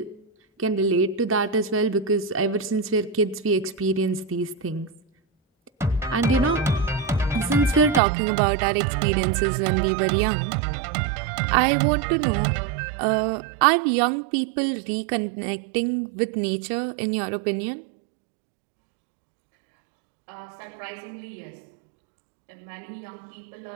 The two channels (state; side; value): drops out; left; at 8.0 s